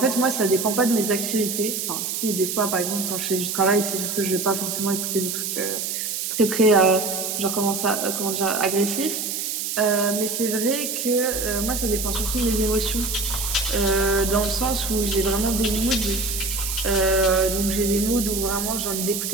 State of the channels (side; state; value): right; noise; hiss, 3 dB below the sound